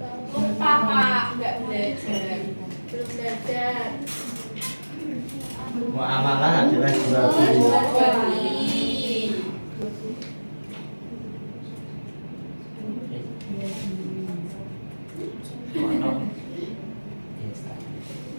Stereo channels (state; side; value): inverted; both; correlation -1.00